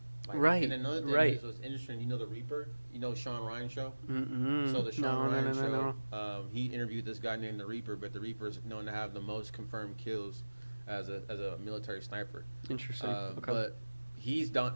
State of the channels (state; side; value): inverted; both; correlation -1.00